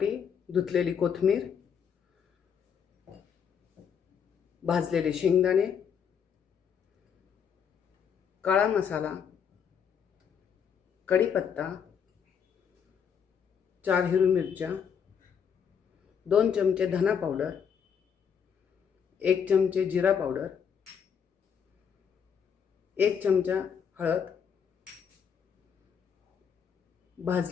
धुतलेली कोथिंबीर, भाजलेले शेंगदाणे, काळा मसाला, कढीपत्ता, 4 हिरवी मिरच्या, 2 चमचे धना पावडर, 1 चमचे जिरा पावडर, 1 चमचा हळद,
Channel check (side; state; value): right; quieter; 7.4 dB